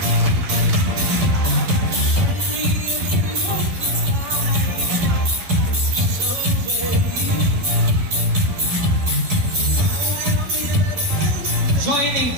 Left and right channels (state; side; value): late; left; 11 ms